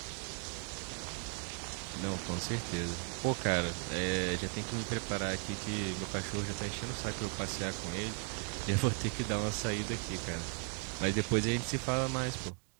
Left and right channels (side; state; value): left; quieter; 39.5 dB